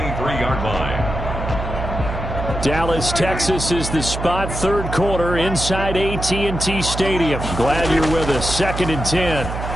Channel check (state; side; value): noise; right; hum, 6 dB below the sound